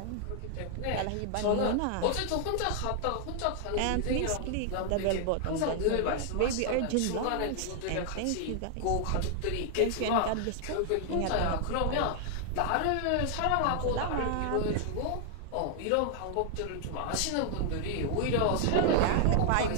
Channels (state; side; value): different; both; correlation 0.00